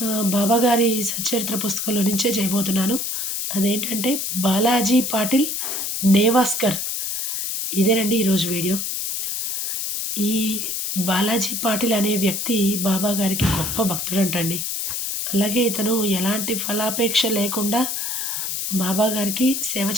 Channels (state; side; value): noise; left; hiss, 2 dB below the sound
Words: బాబాగారి సచ్చరిత్ర పుస్తకంలో నుంచే చేయబోతున్నాను. అదేంటంటే 'బాలాజీ పాటిల్ నేవాస్కర్' ఇదేనండి ఈరోజు వీడియో. ఈ బాలాజీ పాటిల్ అనే వ్యక్తి బాబాగారికి గొప్ప భక్తుడంటండి. అలాగే ఇతను ఎలాంటి ఫలాపేక్ష లేకుండా బాబాగారికి సేవ